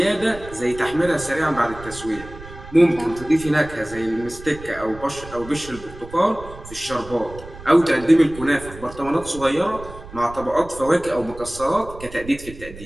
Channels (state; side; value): noise; right; rumble, 16 dB below the sound